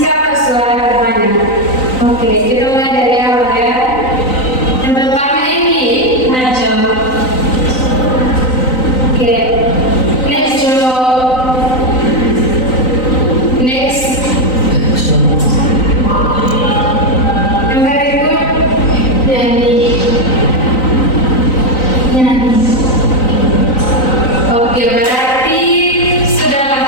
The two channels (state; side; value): late; right; 3.9 ms